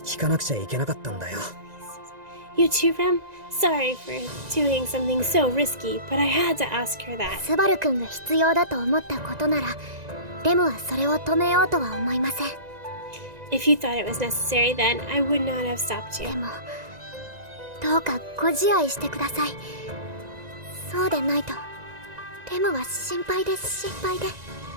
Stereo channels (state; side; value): late; left; 1.9 ms